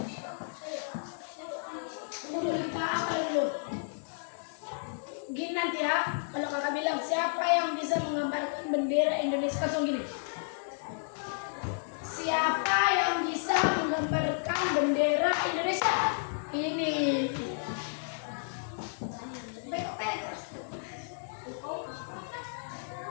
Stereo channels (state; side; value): silent; right; digital silence